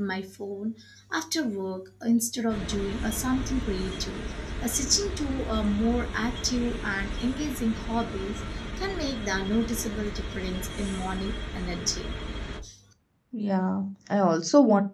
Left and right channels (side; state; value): both; identical; correlation 1.00